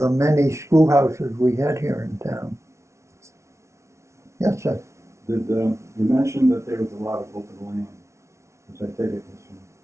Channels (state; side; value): late; left; 0.13 ms